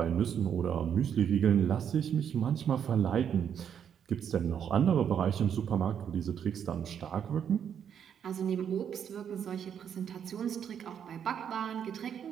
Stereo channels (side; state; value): left; quieter; 8.4 dB